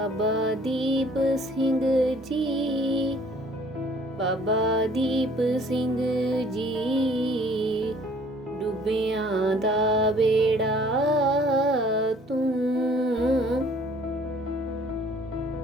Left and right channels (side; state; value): both; normal; correlation 0.56